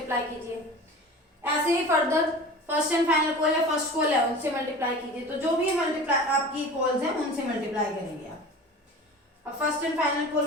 कीजिए। ऐसे ही further first and final call है, फर्स्ट कॉल है, उनसे मल्टीप्लाई कीजिए। तो जो भी मल्टीप्लाई आपकी कॉल्स हैं उनसे मल्टीप्लाई करेंगे आप। अब फर्स्ट एंड फाइनल कॉल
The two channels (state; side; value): normal; both; correlation 0.37